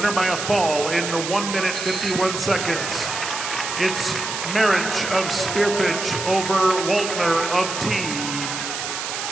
by a fall in 1 minute 51 seconds. It's Marich of Spearfish over Waltner of T.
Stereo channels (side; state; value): right; noise; hiss, 5 dB below the sound